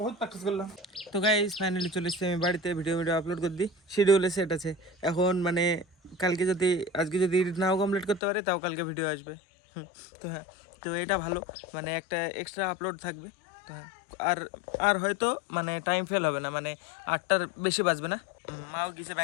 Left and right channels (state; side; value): drops out; right; at 8.2 s